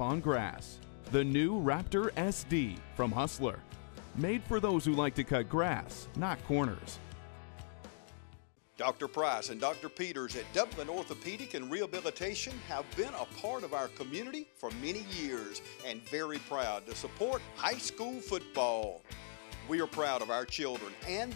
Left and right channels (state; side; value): silent; right; digital silence